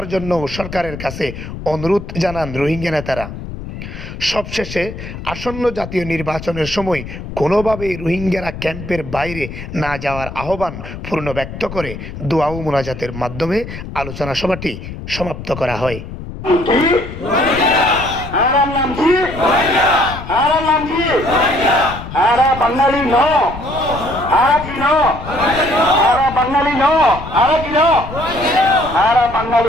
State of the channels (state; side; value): noise; left; rumble, 10 dB below the sound